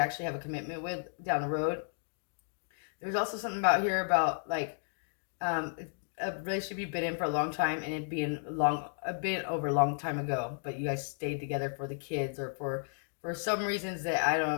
have a commitment with down the road. There's also something about here about like a relationship you've been in for a long time and it being a bit over a long time ago, but you guys stayed together for the kids or for some reasons that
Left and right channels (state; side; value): silent; right; digital silence